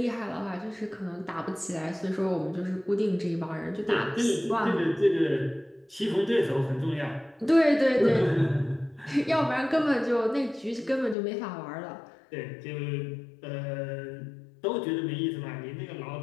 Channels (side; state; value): right; drops out; at 11.2 s